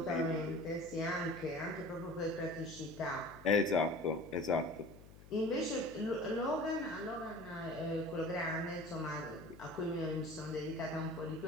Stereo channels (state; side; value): noise; left; hum, 19 dB below the sound